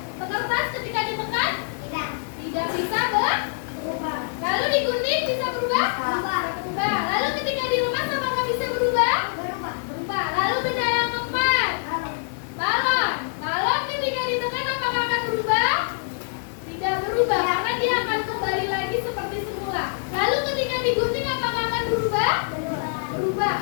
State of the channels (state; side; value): silent; right; digital silence